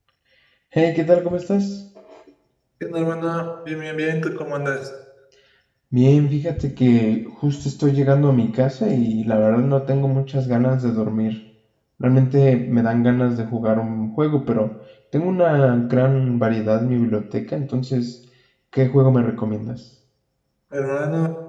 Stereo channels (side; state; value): both; identical; correlation 1.00